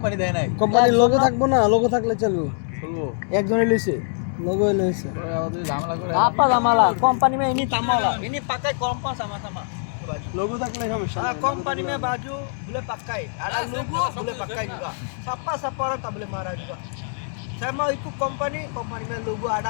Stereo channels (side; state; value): right; silent; digital silence